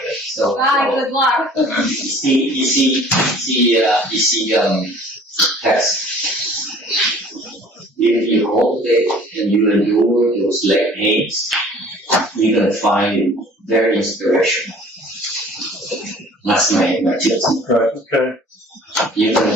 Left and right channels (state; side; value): normal; both; correlation 0.50